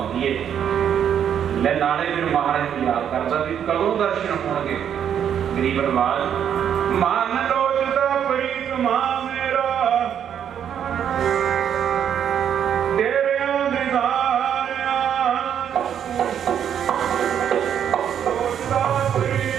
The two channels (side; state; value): left; quieter; 8.9 dB